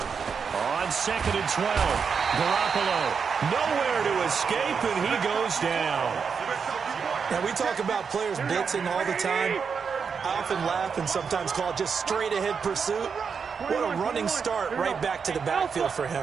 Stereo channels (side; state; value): left; quieter; 6.0 dB